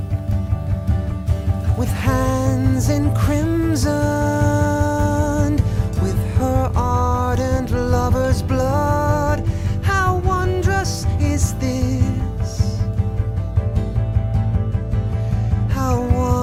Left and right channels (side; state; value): both; identical; correlation 1.00